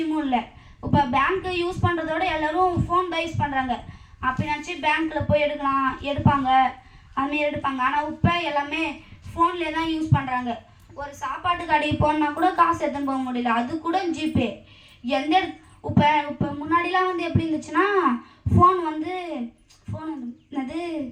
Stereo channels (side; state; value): both; identical; correlation 1.00